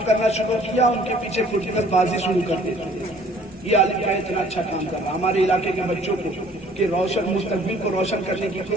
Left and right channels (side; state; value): both; normal; correlation 0.56